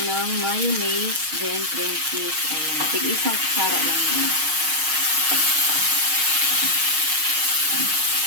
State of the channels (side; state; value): left; late; 6.4 ms